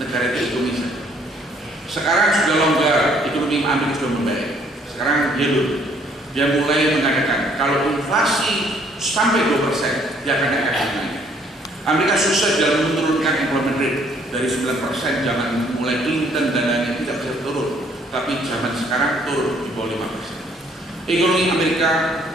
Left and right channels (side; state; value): both; normal; correlation 0.63